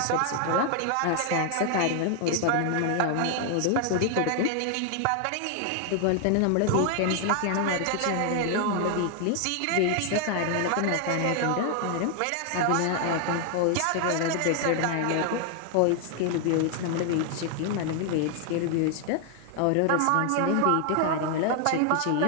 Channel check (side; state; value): both; different; correlation 0.00